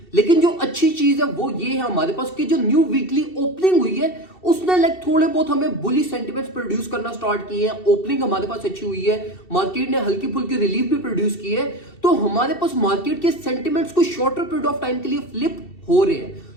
लेकिन जो अच्छी चीज है वो ये है हमारे पास कि जो न्यू वीकली ओपनिंग हुई है उसने थोड़े बहुत हमें बुलिश सेंटिमेंट्स प्रोड्यूस करना स्टार्ट किए हैं। ओपनिंग हमारे पास अच्छी हुई है, मार्केट ने हल्की फुल्की रिलीफ भी प्रोड्यूस की है, तो हमारे पास मार्केट के सेंटिमेंट्स को शॉर्टर पीरियड ऑफ टाइम के लिए फ्लिप हो रहे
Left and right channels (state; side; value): late; right; 2.7 ms